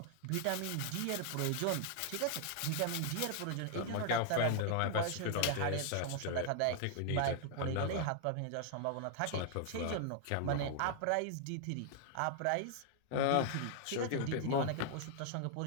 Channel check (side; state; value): both; different; correlation 0.00